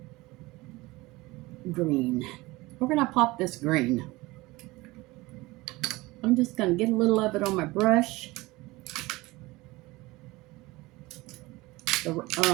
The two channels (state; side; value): quieter; left; 21.0 dB